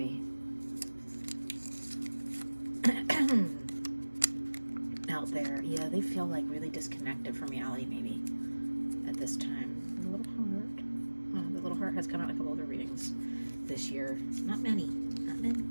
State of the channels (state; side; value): inverted; both; correlation -1.00